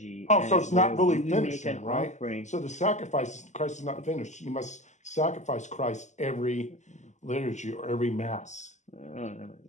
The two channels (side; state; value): right; late; 0.34 ms